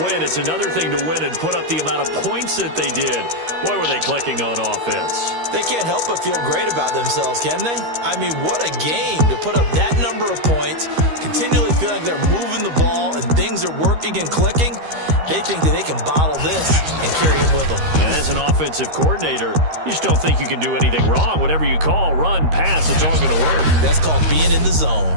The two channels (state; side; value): late; left; 13 ms